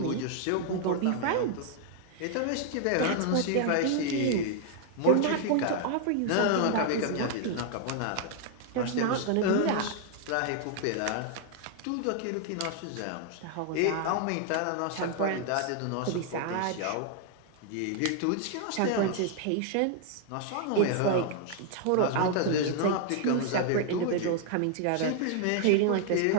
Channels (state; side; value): different; both; correlation 0.00